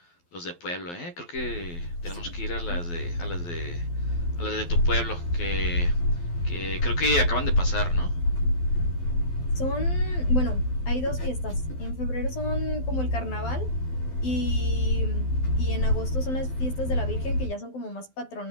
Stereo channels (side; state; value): right; late; 12 ms